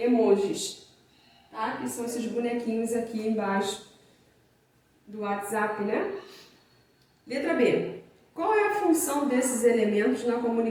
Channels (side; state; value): both; identical; correlation 1.00